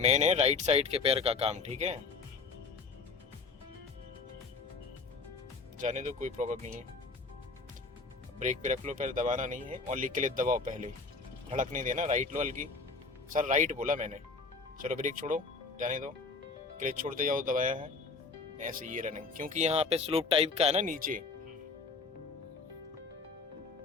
है राइट साइड के पैर का काम, ठीक है। जाने दो, कोई प्रॉब्लम नहीं है। ब्रेक पे रख लो, पैर दबाना नहीं है। ओनली क्लच दबाओ पहले, धड़क नहीं देना। राइट लो हल्की। सर राइट बोला मैंने। चलो ब्रेक छोड़ो, जाने दो। क्लच छोड़ते जाओ, दबाया है ऐसे ये रनिंग, क्योंकि यहाँ पे स्लोप टाइप का है ना नीचे।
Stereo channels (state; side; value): quieter; right; 4.3 dB